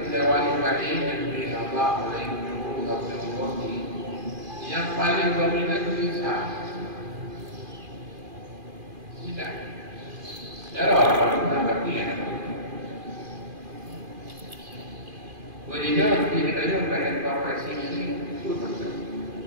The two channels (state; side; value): late; left; 2.4 ms